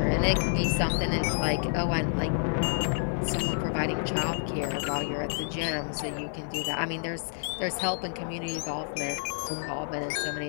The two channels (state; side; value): silent; right; digital silence